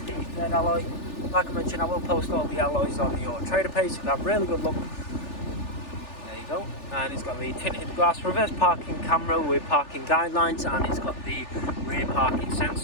the third alloy. Like I mentioned, I will post all the alloys on the Auto Trader page so you can have a really good look. There you go. And it's got the tinted glass, reverse parking camera with parking guidelines, and it's got the rear parking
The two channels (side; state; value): right; late; 3.4 ms